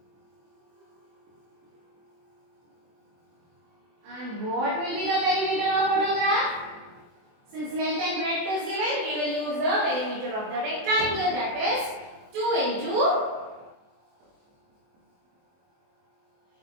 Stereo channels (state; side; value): late; left; 23 ms